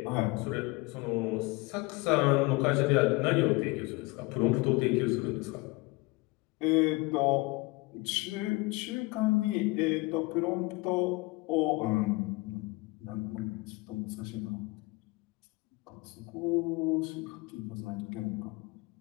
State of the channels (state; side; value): quieter; right; 24.4 dB